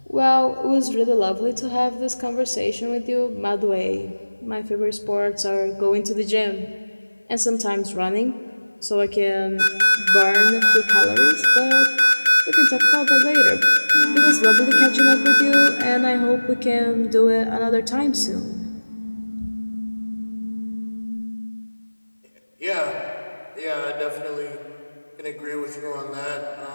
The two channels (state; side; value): inverted; both; correlation -1.00